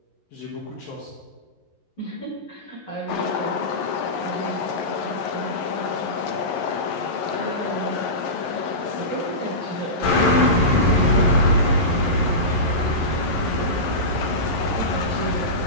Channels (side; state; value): right; late; 11 ms